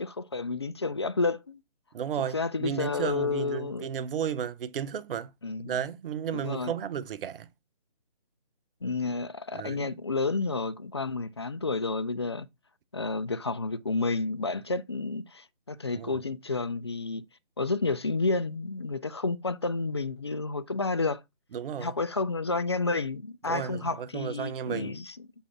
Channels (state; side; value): inverted; both; correlation -0.41